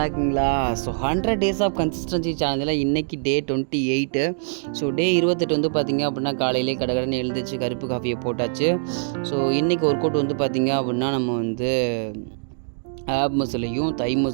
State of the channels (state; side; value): silent; left; digital silence